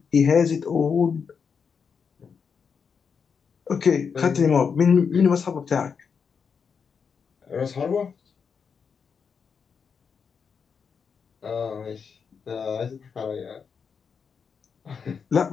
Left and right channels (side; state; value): right; quieter; 6.2 dB